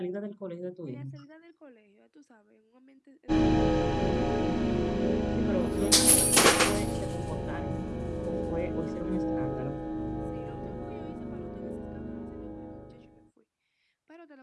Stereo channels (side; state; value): both; identical; correlation 1.00